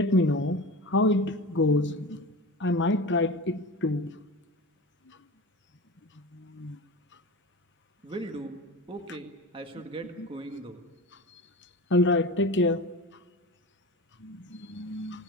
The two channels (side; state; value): both; normal; correlation 0.30